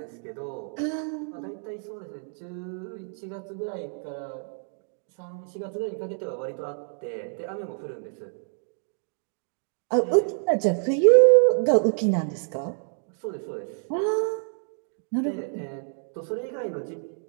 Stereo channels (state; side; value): silent; left; 58 dB below the other